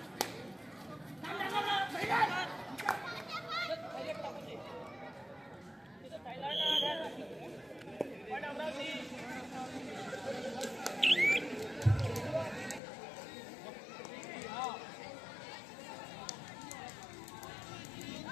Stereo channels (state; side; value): drops out; right; at 12.8 s